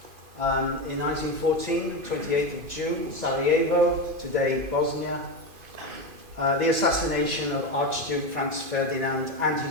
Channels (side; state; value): left; late; 2.5 ms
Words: In 1914, 28th of June, Sarajevo, today Bosnia. The assassination of Archduke Franz Ferdinand and